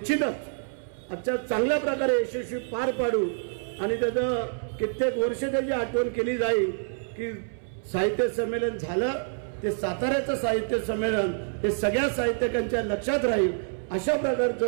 आजच्या चांगल्या प्रकारे यशस्वी पार पाडू. आणि त्याचं कित्येक वर्ष त्याची आठवण केली जाईल की साहित्य संमेलन झालं ते साताऱ्याचं साहित्य संमेलन हे सगळ्या साहित्यिकांच्या लक्षात राहील. अशा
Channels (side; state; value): left; silent; 60 dB below the other